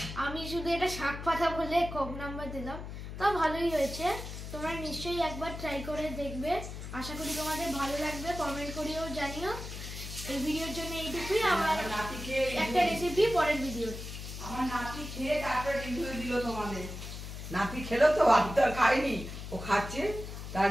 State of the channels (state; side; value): noise; left; hum, 9 dB below the sound